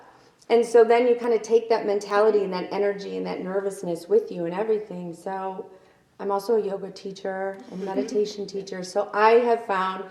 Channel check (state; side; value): identical; both; correlation 1.00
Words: And so then you kind of take that mentality and that energy and that nervousness with you and everything. So I'm also a yoga teacher and meditation teacher. So I have found